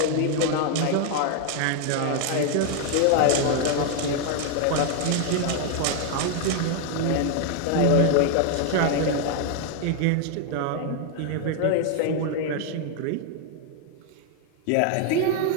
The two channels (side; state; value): both; different; correlation 0.00